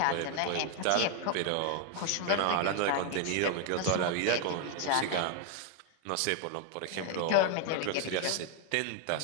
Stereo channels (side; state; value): both; different; correlation 0.00